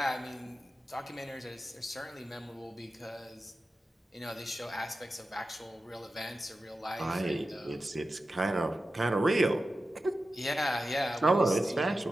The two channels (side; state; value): both; normal; correlation 0.93